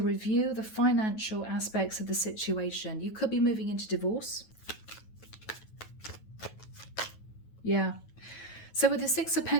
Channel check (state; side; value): late; right; 9.2 ms